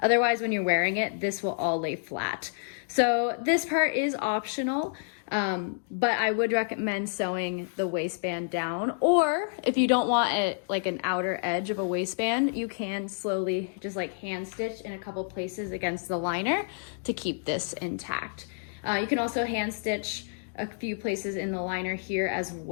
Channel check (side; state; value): right; silent; digital silence